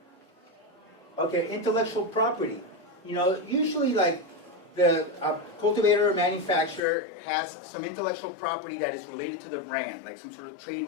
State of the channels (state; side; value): drops out; right; at 6.8 s